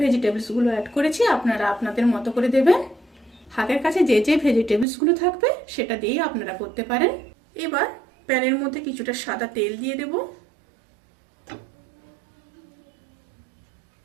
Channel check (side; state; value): left; drops out; at 4.9 s